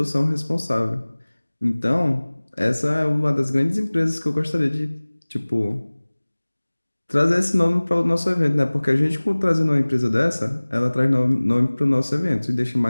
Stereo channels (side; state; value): both; inverted; correlation -1.00